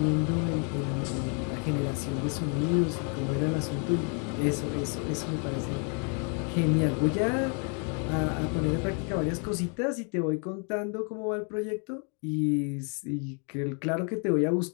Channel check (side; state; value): right; quieter; 39.6 dB